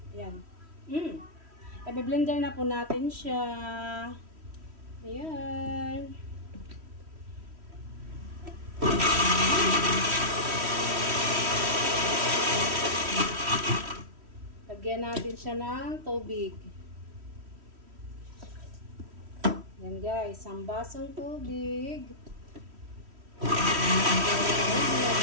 Ayan. I-blender na po natin siya. Ayan. Lagyan natin siya ng tubig. Yan guys, isang basong tubig.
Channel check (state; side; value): late; left; 3.1 ms